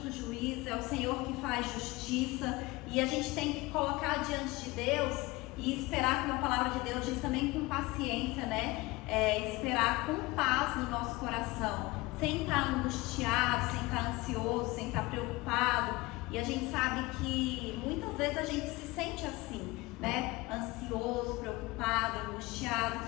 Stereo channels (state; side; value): quieter; right; 21.7 dB